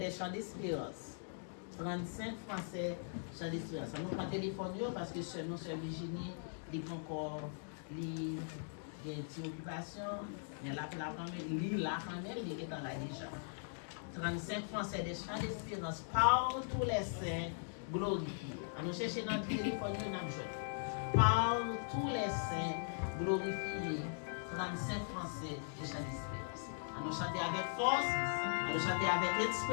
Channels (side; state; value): right; silent; digital silence